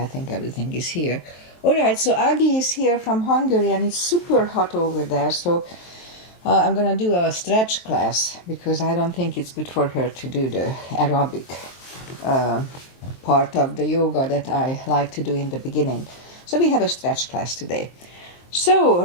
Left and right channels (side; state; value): right; late; 23 ms